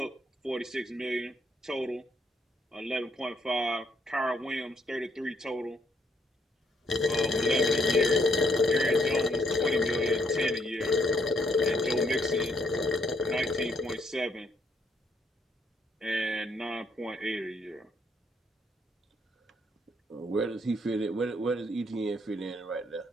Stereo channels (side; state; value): both; normal; correlation 0.72